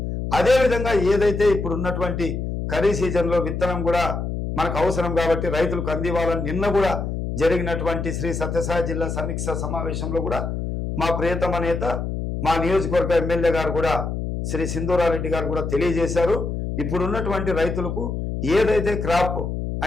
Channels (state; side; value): noise; left; hum, 4 dB below the sound